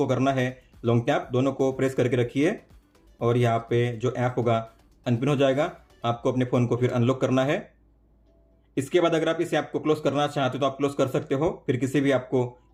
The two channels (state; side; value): identical; both; correlation 1.00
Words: करना है लॉन्ग टैप, दोनों को प्रेस करके रखिए और यहाँ पे जो ऐप होगा अनपिन हो जाएगा। आपको अपने फ़ोन को फिर अनलॉक करना है। इसके बाद अगर आप इस ऐप को क्लोज करना चाहते हो तो आप क्लोज कर सकते हो, फिर किसी भी ऐप को